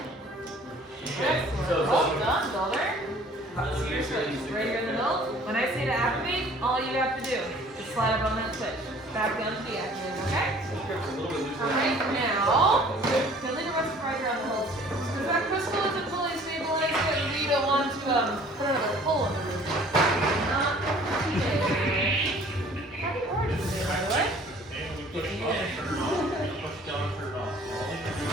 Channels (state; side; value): normal; both; correlation 0.52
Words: Excellent. Well done, builder. Seriously, right here in the middle. When I say to activate, all you have to do is slide up on that switch. Back down to the activator, okay? Alright, now, you'll need to rest right around the whole switch. Because that crystal isn't fully stabilized yet, and we don't want to put another hole in the room. Not today. How do you order today, by the way?